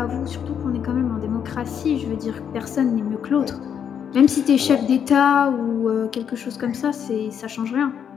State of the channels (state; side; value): quieter; right; 8.1 dB